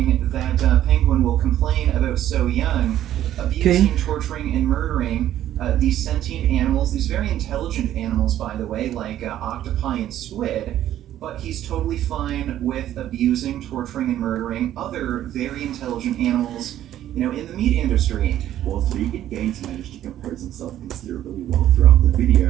that Penguin will complain about So Young abusing, torturing, and murdering these sentient animals, these very intelligent animals, by the way, like octopi and squid, but he's totally fine with abusing, torturing, and murdering other very intelligent animals, you know, in the meat industry. Whilst Vegan Gains managed to compose himself considerably well throughout the video,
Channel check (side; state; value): left; quieter; 12.2 dB